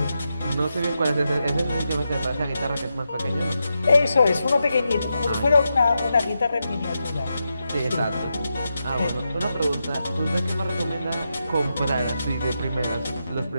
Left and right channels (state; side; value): inverted; both; correlation -0.87